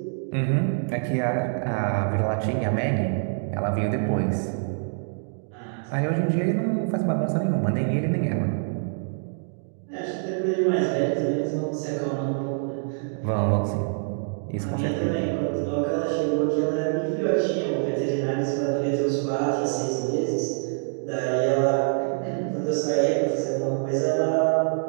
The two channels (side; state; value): left; silent; digital silence